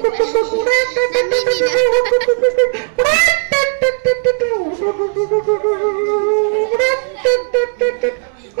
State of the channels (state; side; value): silent; left; 70 dB below the other